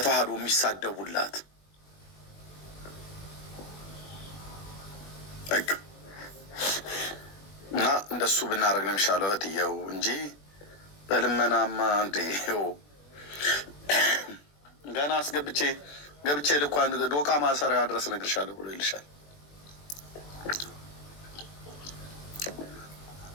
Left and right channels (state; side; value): late; right; 21 ms